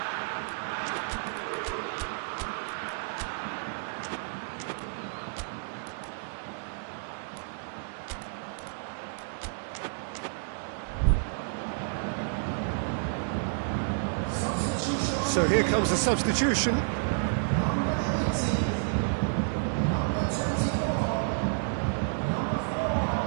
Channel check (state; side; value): silent; left; digital silence